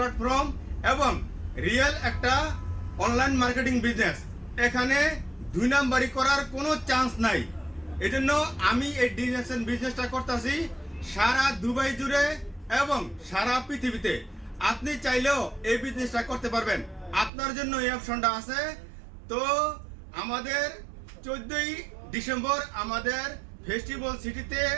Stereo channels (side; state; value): left; drops out; at 17.3 s